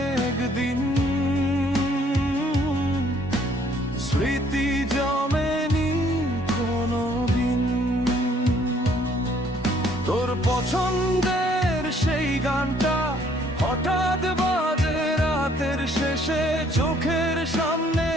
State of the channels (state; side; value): normal; both; correlation 0.63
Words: দিন, স্মৃতি জমেনি কোনো দিন। তোর পছন্দের সেই গানটা হঠাৎ বাজে রাতের শেষে, চোখের সামনে